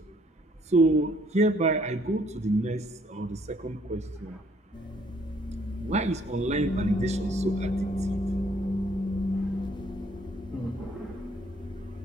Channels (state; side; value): normal; both; correlation 0.64